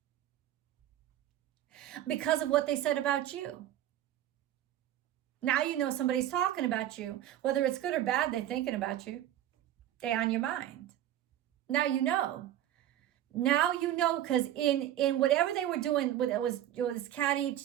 because of what they said about you. Now you know somebody's talking about you. Whether it's good or bad, they're thinking about you. They're on your mind. Now you know. Now you know, because in whatever they were doing, it was catty,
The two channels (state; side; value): quieter; left; 12.3 dB